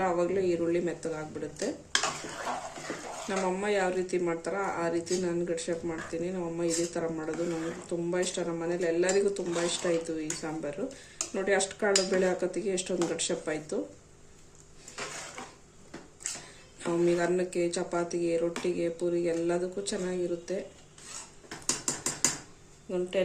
ಆವಾಗಲೇ ಈರುಳ್ಳಿ ಮೆತ್ತಗಾಗ್ಬಿಡುತ್ತೆ. ನಮ್ಮಮ್ಮ ಯಾವ ರೀತಿ ಮಾಡ್ತಾರೋ ಆ ರೀತಿ ನಾನು ಗಡ್ಸಪ್ ಮಾಡ್ತೀನಿ. ನಮ್ಮಮ್ಮ ಇದೇ ಥರ ಮಾಡೋದು ನನಗೆ ತುಂಬ ಇಷ್ಟ. ನಮ್ಮ ಮನೇಲಿ ಎಲ್ಲರಿಗೂ ತುಂಬ ಇಷ್ಟ ಆಯಿತು ಈ ಸಾಂಬಾರು. ನೋಡಿ, ಅಷ್ಟು ಕಾಳು ಬೇಳೆ ಹಾಕೋತ್ತಿಗೆ ಎಷ್ಟೊಂದು ಗಡ್ಸಪ್ ಆಯಿತು. ನಮಗೆ ಅನ್ನಕ್ಕೆ, ಚಪಾತಿಗೆ, ರೊಟ್ಟಿಗೆ, ಪೂರಿಗೆ ಎಲ್ಲದಕ್ಕೂ ಚೆನ್ನಾಗಿರುತ್ತೆ. ಒಂದು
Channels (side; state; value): both; identical; correlation 1.00